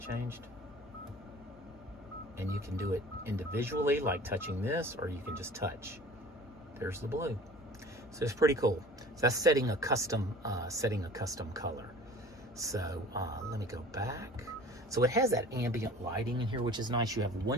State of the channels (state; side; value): normal; both; correlation 0.44